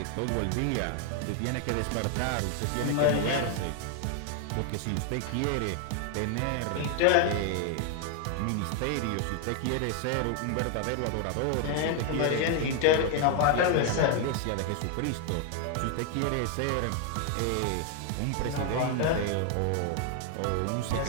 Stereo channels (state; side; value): different; both; correlation 0.00